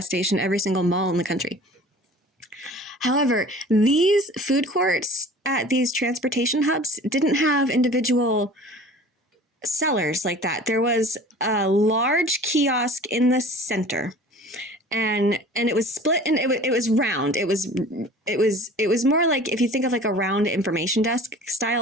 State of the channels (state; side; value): normal; both; correlation 0.44